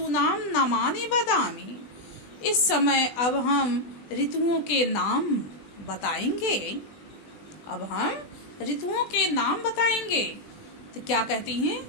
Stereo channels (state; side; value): late; right; 20 ms